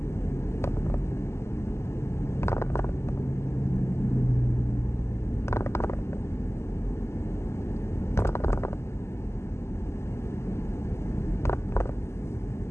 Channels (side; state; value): right; late; 0.13 ms